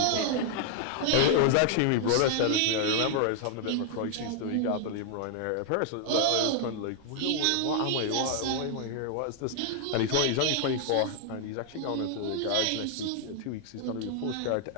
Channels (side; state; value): both; different; correlation 0.00